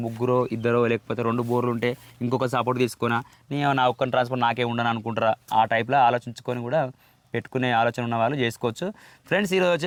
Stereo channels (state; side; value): identical; both; correlation 1.00